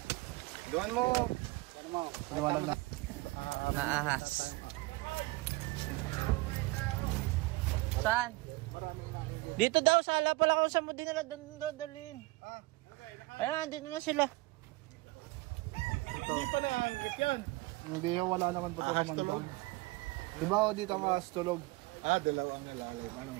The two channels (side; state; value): left; quieter; 22.6 dB